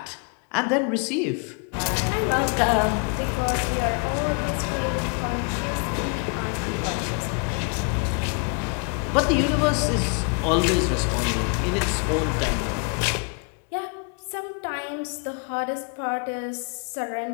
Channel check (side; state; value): right; quieter; 37.4 dB